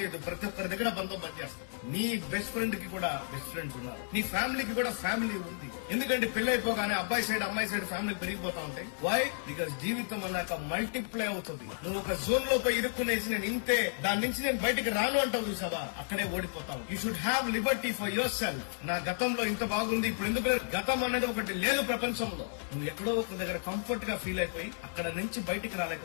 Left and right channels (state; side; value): silent; right; digital silence